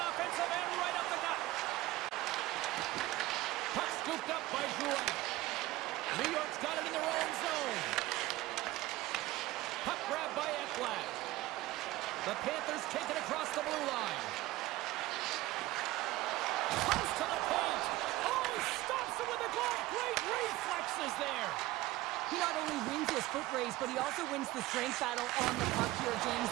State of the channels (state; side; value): quieter; left; 17.6 dB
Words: offensive end, right up the gut. Puck scooped up by Jouet. New York's got it in their own zone. Puck grab by Ekblad. The Panthers take it across the blue line. Close to the paint. Oh, he stops it with a glove. Great reflexes there. He not only wins his foot race, but he also wins the strength battle on the puck here, James.